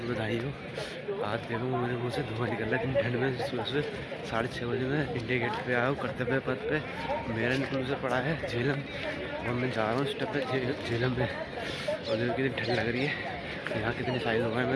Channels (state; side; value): identical; both; correlation 1.00